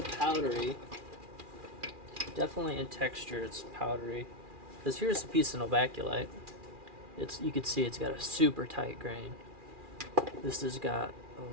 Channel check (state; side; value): late; left; 2.4 ms